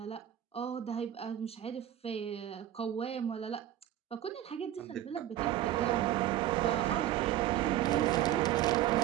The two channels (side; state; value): left; quieter; 12.5 dB